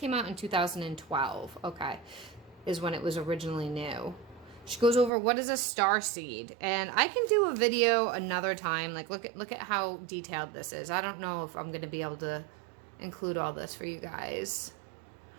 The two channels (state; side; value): drops out; left; at 5.1 s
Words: out in 2012. Okay. Is when it was originally new. She goes over what is a starseed, and I can do a video another time. Like look at how detailed this is. I don't know if I'm going to be able to include all this for you guys.